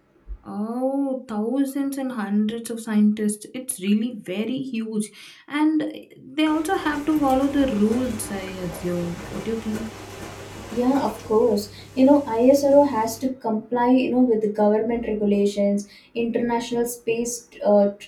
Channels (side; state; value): both; identical; correlation 1.00